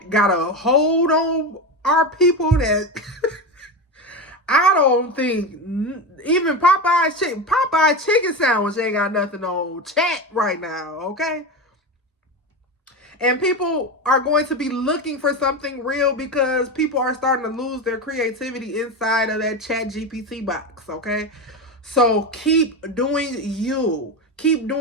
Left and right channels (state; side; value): normal; both; correlation 0.19